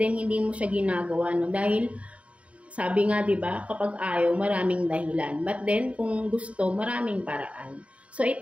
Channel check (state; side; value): late; left; 0.064 ms